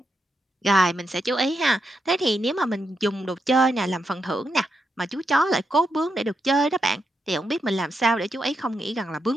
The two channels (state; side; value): normal; both; correlation 0.83